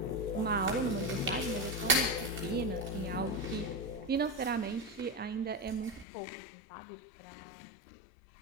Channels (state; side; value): drops out; right; at 6.1 s